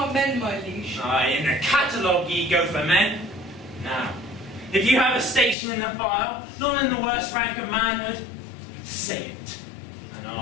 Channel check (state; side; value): drops out; right; at 5.6 s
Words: men, my liege. Aye, in the catalogue ye go for men. Now, if you have a station in the file, not in the worst rank of manhood, say it, and